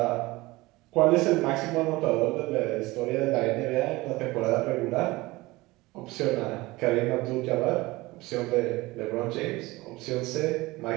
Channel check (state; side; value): quieter; left; 20.7 dB